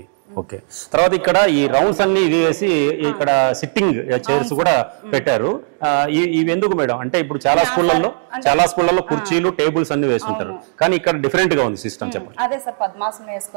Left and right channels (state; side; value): silent; left; digital silence